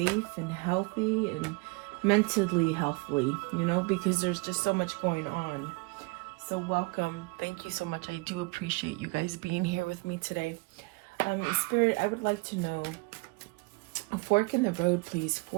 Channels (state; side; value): quieter; left; 26.7 dB